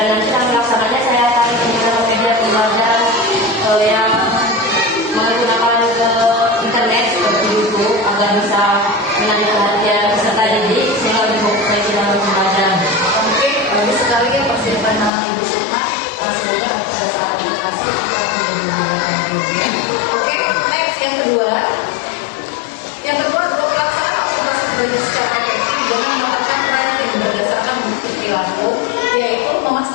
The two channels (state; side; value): drops out; right; at 15.1 s